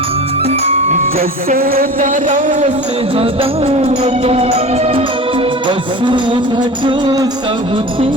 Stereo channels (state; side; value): normal; both; correlation 0.35